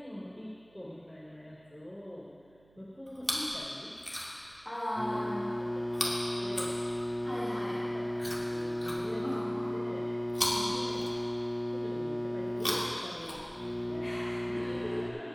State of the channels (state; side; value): noise; right; hum, 29 dB below the sound